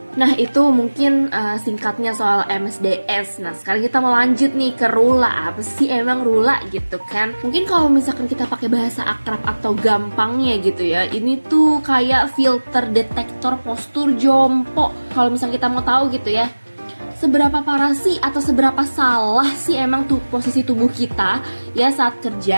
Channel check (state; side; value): inverted; both; correlation -1.00